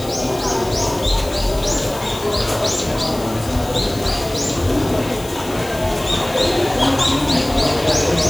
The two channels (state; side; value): noise; left; hiss, 16 dB below the sound